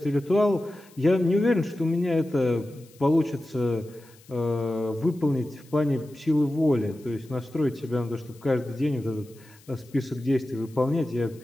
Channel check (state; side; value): noise; left; hiss, 27 dB below the sound